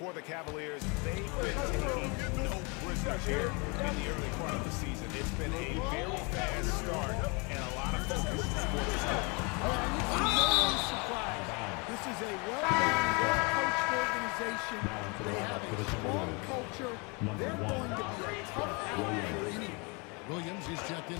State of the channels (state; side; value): quieter; right; 30.6 dB